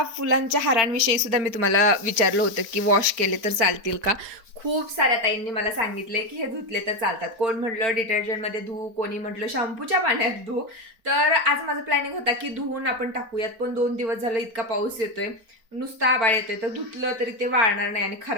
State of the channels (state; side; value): late; left; 4.5 ms